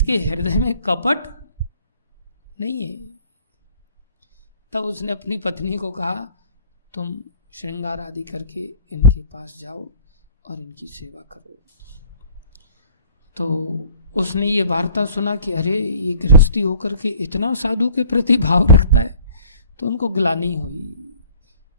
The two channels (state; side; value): inverted; both; correlation -0.51